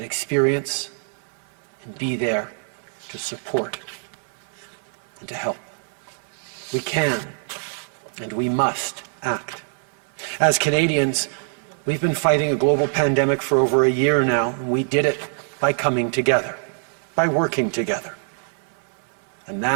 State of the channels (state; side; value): silent; left; 58 dB below the other